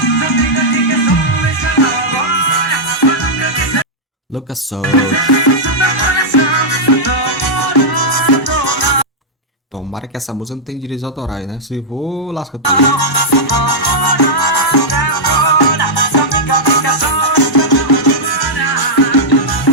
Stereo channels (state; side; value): normal; both; correlation -0.07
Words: Lucas Souza. Tomara que essa música não tenha direitos autorais, né? Se for, lasca tudo.